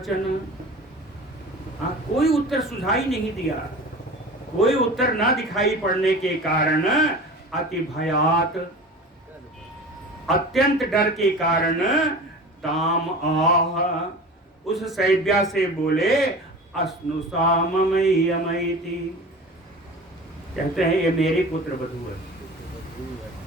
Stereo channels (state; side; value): normal; both; correlation 0.36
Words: हाँ, कोई उत्तर सुझाई नहीं दिया। कोई उत्तर ना दिखाई पड़ने के कारण अति भयात, अत्यंत डर के कारण ताम आह, उस सैब्या से बोले अस्नुषा ममयमयति, कहते हैं ये मेरी पुत्र वधू है।